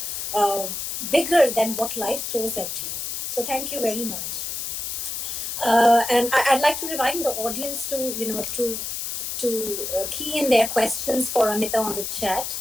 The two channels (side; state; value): left; noise; hiss, 4 dB below the sound